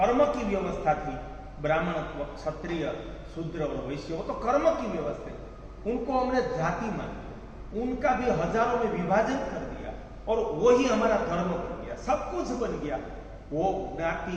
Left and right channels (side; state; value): both; identical; correlation 1.00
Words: की व्यवस्था थी, ब्राह्मणत्व, क्षत्रिय, शूद्र और वैश्य, वो तो कर्म की व्यवस्था है, उनको हमने जाति मान लिया, उनका भी हजारों में विभाजन कर दिया और वही हमारा धर्म बन गया, सब कुछ बन गया। वो ज्ञाति